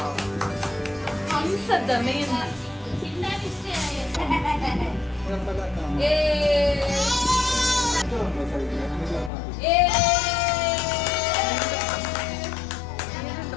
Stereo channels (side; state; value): right; drops out; at 9.3 s